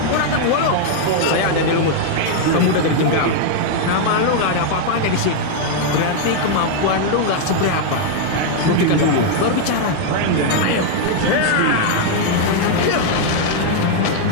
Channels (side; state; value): both; different; correlation 0.00